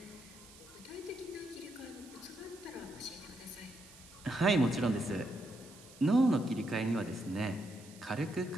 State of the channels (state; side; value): noise; right; hiss, 20 dB below the sound